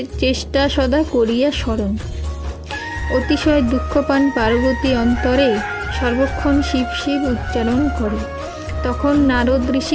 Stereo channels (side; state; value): both; identical; correlation 1.00